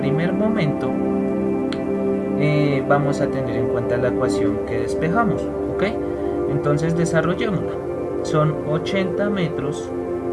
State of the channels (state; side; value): identical; both; correlation 1.00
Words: momento, vamos a tener en cuenta la ecuación que despejamos, ¿ok? Entonces desarrollémosla. Son 80 metros